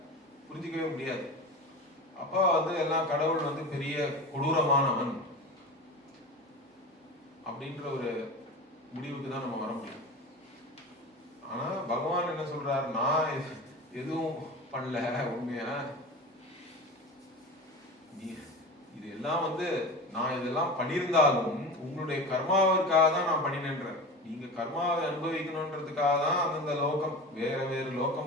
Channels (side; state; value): both; normal; correlation 0.31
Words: புரிஞ்சிக்கவே முடியாது. அப்ப வந்து எல்லாம் கடவுள் வந்து பெரிய கொடூரமானவன் அப்படின்ற ஒரு முடிவுக்கு தான் நம்ம வர முடியும். ஆனா பகவான் என்ன சொல்றாரு, நான் எதுவும் பண்ணல, உண்மையா இது எல்லாம் வந்து நான் இதெல்லாம் பண்ணியிருந்தாலும் உங்களுடைய கர்மாவிற்காக தான் நான் பண்ணினேன்ற. நீங்க கர்மாவை அனுபவிக்கணும்ன்றதுக்காக தான் அந்தந்த லோகம், வேற வேறு